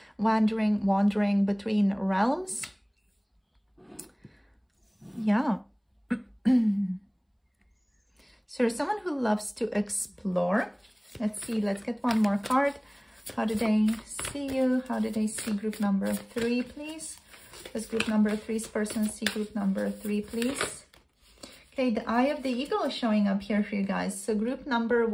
wandering between realms. Yeah. So you're someone who loves to explore. Let's see, let's get one more card. How do they see you? How do they see group number 3, please? Does group number 3's person see group number 3, please? Okay, the eye of the eagle is showing up here for you guys. So group number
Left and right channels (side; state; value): both; identical; correlation 1.00